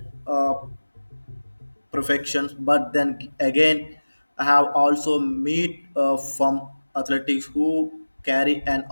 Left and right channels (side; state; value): both; inverted; correlation -1.00